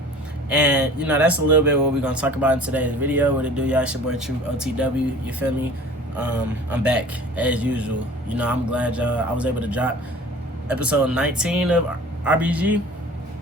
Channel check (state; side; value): normal; both; correlation 0.45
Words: And that's a little bit what we're gonna talk about in today's video. What it do, y'all? It's your boy True OTW, you feel me? I'm back as usual. I'm glad I was able to drop episode 19 of RBG.